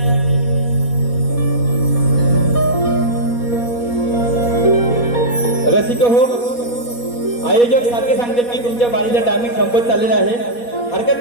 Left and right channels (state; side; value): late; right; 4.2 ms